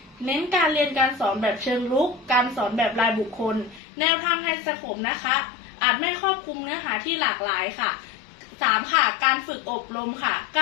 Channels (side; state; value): right; drops out; at 3.8 s